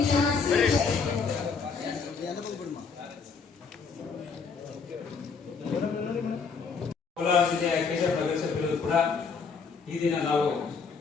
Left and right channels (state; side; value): quieter; right; 5.4 dB